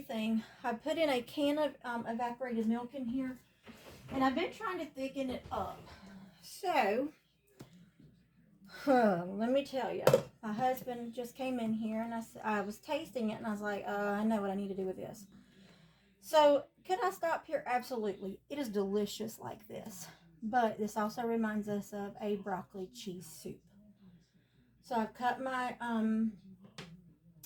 I put in a can of evaporated milk in here, and I've been trying to thicken it up. So, let me tell you, my husband just came in here, and I was tasting it, and I was like, I know what I need to do with this. So, could I stop here? Absolutely. It is delicious like this. But this also reminds us of a broccoli cheese soup. So I've cut my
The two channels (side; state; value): both; identical; correlation 1.00